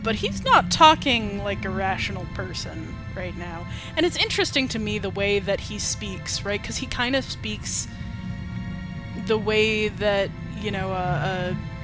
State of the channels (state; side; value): identical; both; correlation 1.00